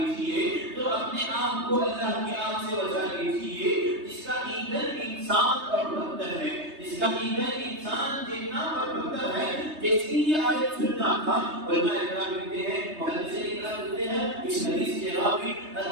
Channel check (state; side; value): late; left; 3.2 ms